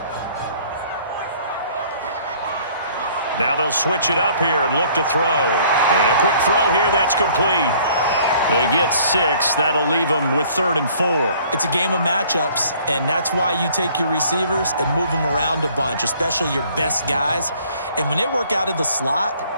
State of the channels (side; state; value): both; inverted; correlation -0.57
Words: Now they'll switch it up here and look to throw. And a quick throw here, that's complete. They get 6. That'll leave them with 3rd and 4. It's a game of matchups, and that's why you take your receivers and move them around a bunch, especially your best guys. And when they work out of the slot,